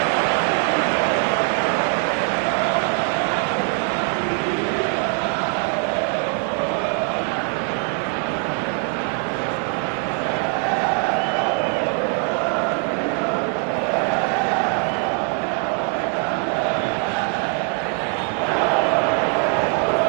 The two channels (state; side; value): quieter; left; 39.7 dB